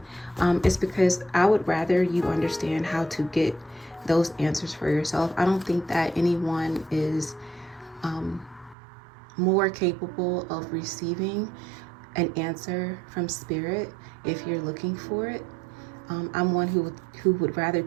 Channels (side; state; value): left; drops out; at 8.8 s